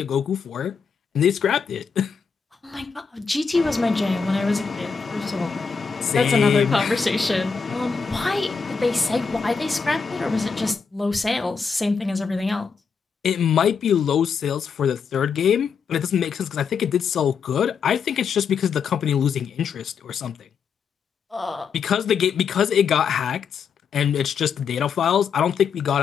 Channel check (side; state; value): right; quieter; 5.9 dB